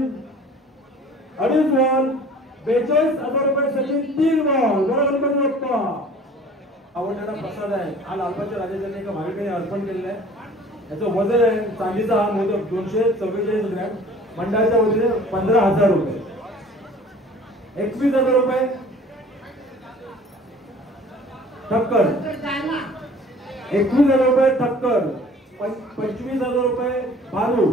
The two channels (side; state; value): both; normal; correlation 0.48